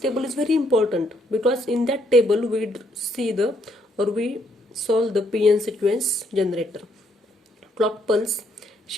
is very important because in that table we see the or we solve the PN sequence generator. Clock pulse,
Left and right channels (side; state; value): both; normal; correlation 0.71